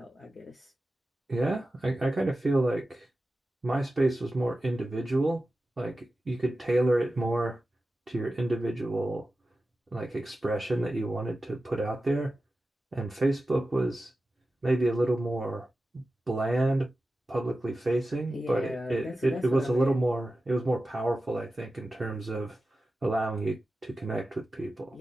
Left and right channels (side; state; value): both; normal; correlation 0.94